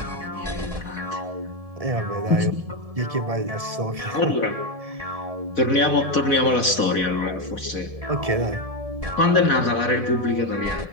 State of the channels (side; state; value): left; late; 1.7 ms